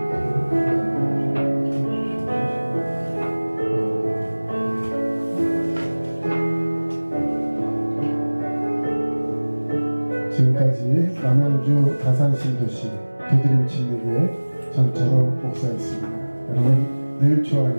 지금까지 남양주 다산신도시 두드림 침례교회 전철호 목사였습니다. 여러분 늘 주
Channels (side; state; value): both; inverted; correlation -1.00